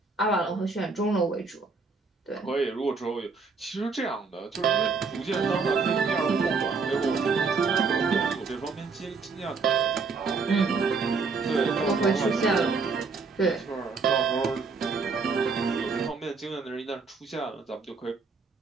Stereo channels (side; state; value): left; quieter; 4.6 dB